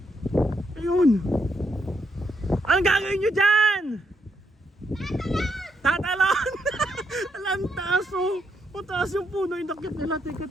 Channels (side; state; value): both; normal; correlation 0.77